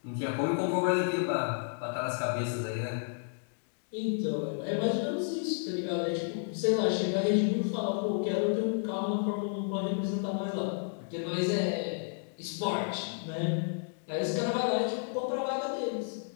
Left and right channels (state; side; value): silent; right; digital silence